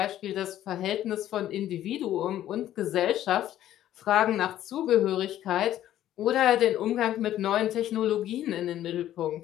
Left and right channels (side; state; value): right; quieter; 12.4 dB